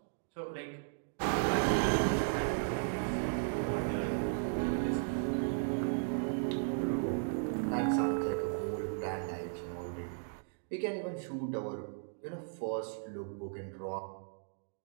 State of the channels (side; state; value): left; silent; digital silence